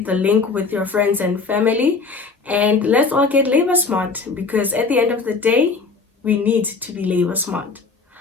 the link with your friends and family, and let's all get labor smart, because at the end of the day, we need to be labor smart.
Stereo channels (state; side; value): quieter; right; 4.4 dB